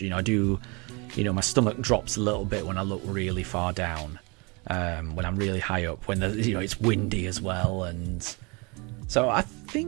My stomach drops a little bit when I look really far down, when I'm really high up, when it's windy as well. And so I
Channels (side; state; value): left; quieter; 28.9 dB